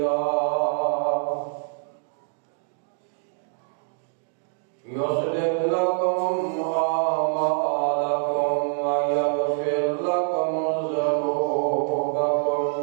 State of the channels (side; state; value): left; silent; digital silence